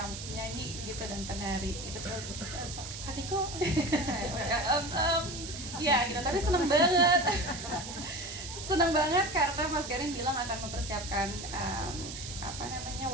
nyanyi gitu dan penari itu tuh Kadiko ya gitu. Tapi seneng banget karena Mas Garin bilang akan mempersiapkan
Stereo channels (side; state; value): right; noise; hiss, 9 dB below the sound